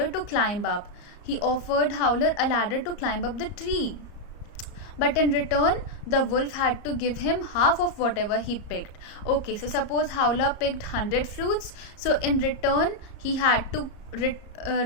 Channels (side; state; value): right; late; 34 ms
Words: to climb up. He offered Howler a ladder to climb up the tree. But in return, the wolf had to give him half of whatever he picked. Okay, so suppose Howler picked 100 fruits. So in return, he had to